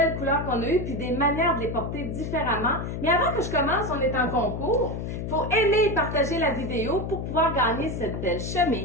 couleurs qu'on a eues, puis des manières de les porter différemment. Mais avant que je commence, on est en concours. Il faut aimer et partager la vidéo pour pouvoir gagner cette belle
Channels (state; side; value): noise; left; hum, 5 dB below the sound